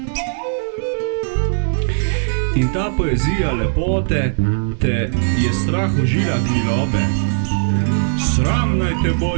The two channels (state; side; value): silent; left; digital silence